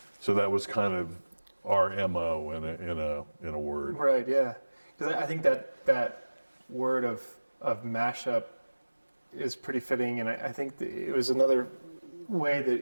So that was kind of our MO in a word. Right. Yeah. Because I think that word of mashup is pretty fitting, and I think it was another way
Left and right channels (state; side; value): inverted; both; correlation -1.00